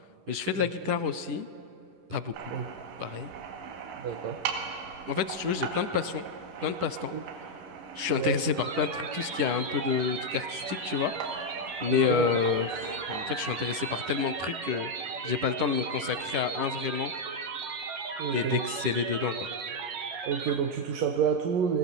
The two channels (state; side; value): late; left; 11 ms